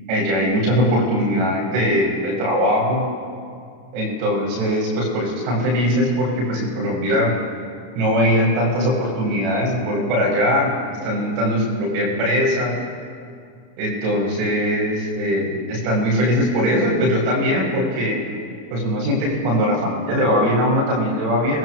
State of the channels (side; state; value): left; late; 33 ms